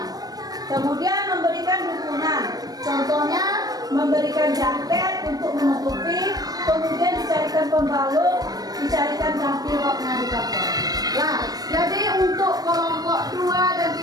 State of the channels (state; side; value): late; left; 0.19 ms